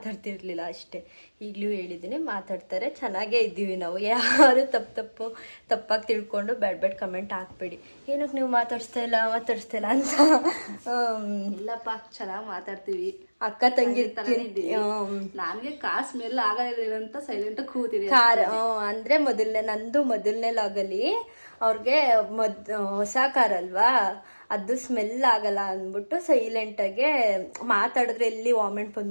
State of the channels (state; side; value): inverted; both; correlation -1.00